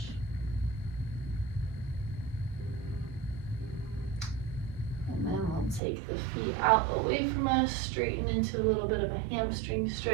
And then we'll take the feet out away from us, straighten into a little bit of a hamstring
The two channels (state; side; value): drops out; left; at 5.8 s